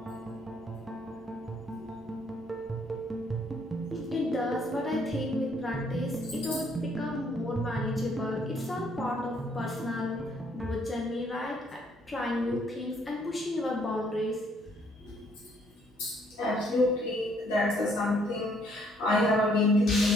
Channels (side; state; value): both; normal; correlation 0.66